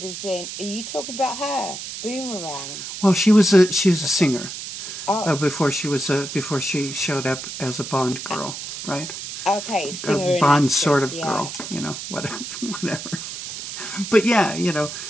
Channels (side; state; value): right; noise; hiss, 8 dB below the sound